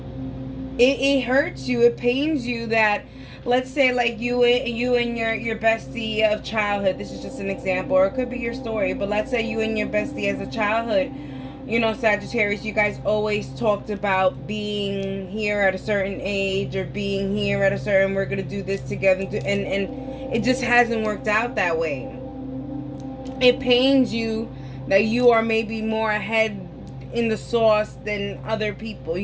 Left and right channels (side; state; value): both; identical; correlation 1.00